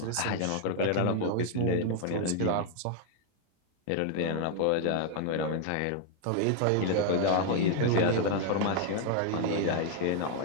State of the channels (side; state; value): both; different; correlation 0.00